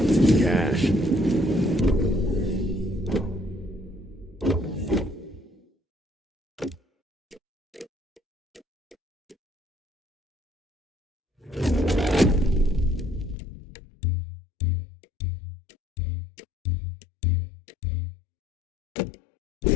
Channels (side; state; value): right; drops out; at 13.4 s